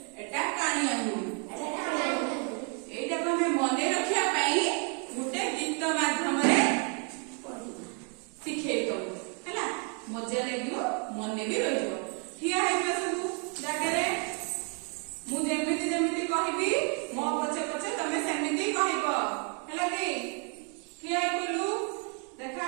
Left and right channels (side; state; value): left; quieter; 38.8 dB